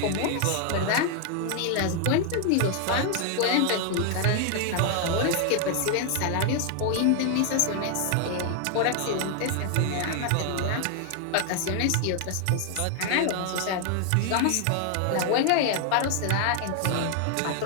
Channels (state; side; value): different; both; correlation 0.00